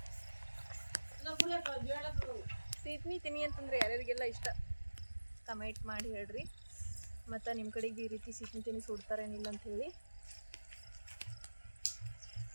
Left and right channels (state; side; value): inverted; both; correlation -1.00